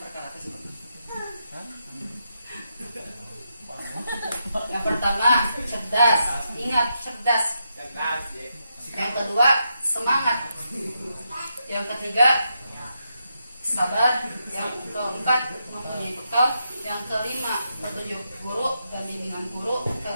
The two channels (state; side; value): inverted; both; correlation -0.83